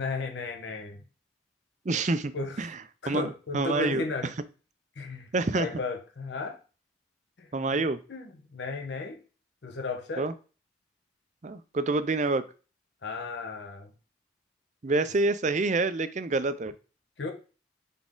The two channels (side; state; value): both; normal; correlation 0.35